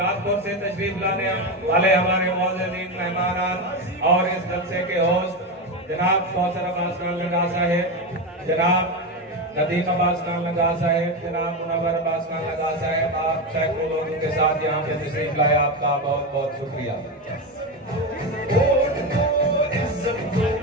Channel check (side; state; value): both; normal; correlation 0.15